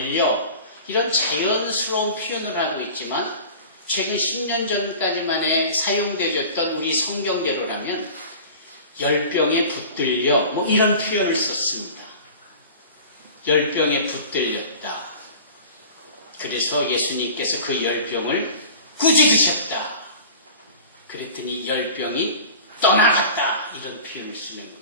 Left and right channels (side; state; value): both; inverted; correlation -0.39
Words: 이런 자연스러운 표현을 하고 있지만 최근 10년 전까지만에 사용되었던 우리 성경대로라면 열병에 붙들려 뭐 이런 표현을 썼습니다. 열병에 붙들렸다. 그래서 예수님께서 그 열병을 꾸짖으셨다. 그랬더니 열병이 떠나갔다. 이런 표현을 쓰는 거예요.